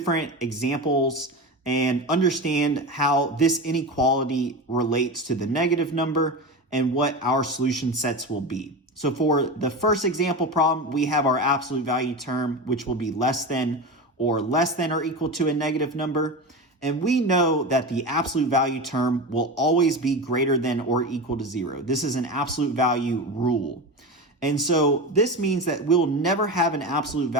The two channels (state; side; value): normal; both; correlation 0.24